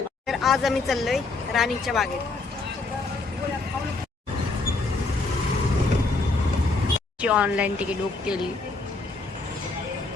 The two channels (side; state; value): right; quieter; 3.6 dB